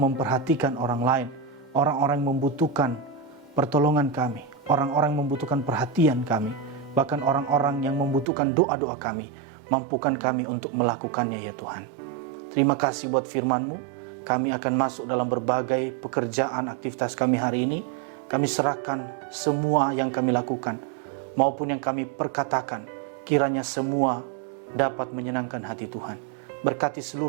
orang lain, orang-orang yang membutuhkan pertolongan kami, orang-orang yang membutuhkan perhatian kami, bahkan orang-orang yang membutuhkan doa-doa kami. Mampukan kami untuk melakukannya ya Tuhan. Terima kasih buat firman-Mu. Kami akan masuk dalam berbagai pekerjaan aktivitas kami hari ini. Kami serahkan semua yang kami lakukan maupun yang kami perkatakan. Kiranya semua dapat menyenangkan hati Tuhan. Berkati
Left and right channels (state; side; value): drops out; left; at 8.2 s